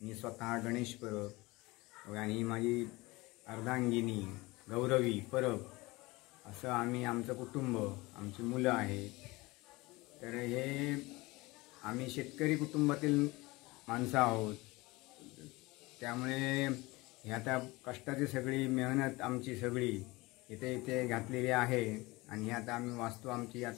मी स्वतः गणेश परब आणि माझी अर्धांगिनी गौरवी परब, असं आम्ही आमचं कुटुंब, आमची मुलं आहेत. तर हे आम्ही शेतकरी कुटुंबातील माणसं आहोत. त्यामुळे हे आता कष्टाची सगळी मेहनत आमची सगळी इथे घातलेली आहे. आणि हे आता आम्ही वास्तू आमची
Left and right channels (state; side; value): quieter; right; 22.2 dB